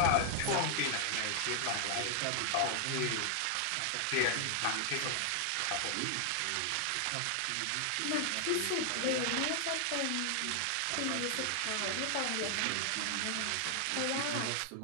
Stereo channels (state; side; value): different; both; correlation 0.00